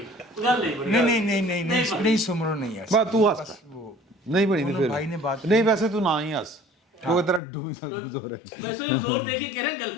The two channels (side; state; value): right; drops out; at 7.4 s